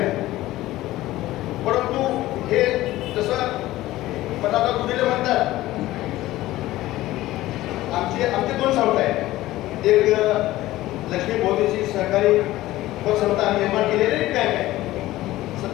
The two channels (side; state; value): right; quieter; 16.4 dB